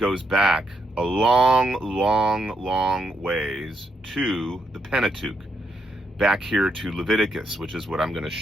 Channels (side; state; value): both; normal; correlation 0.79